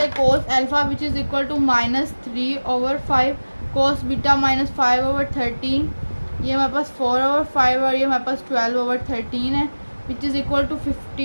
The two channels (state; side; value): inverted; both; correlation -1.00